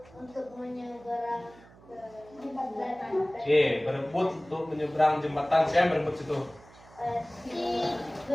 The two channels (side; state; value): right; noise; hum, 24 dB below the sound